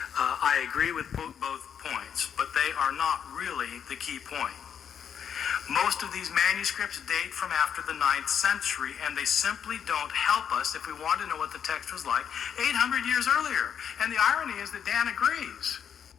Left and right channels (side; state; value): right; quieter; 8.1 dB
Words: I agree with both points, but they are not really the key point. Most of these manuscripts date from after the 9th century, and they simply don't help us if we want to know what the text was like 800 years earlier. And the irony is that Dan agrees.